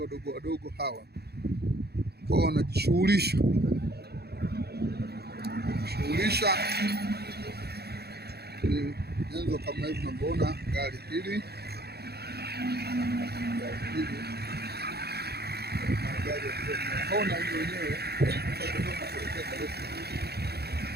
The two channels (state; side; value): late; left; 0.47 ms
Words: wadogo hawa kwa wanajishughulisha ni nyenzo kama hivi mnavyoona. Gari hili naona hiyo wenyewe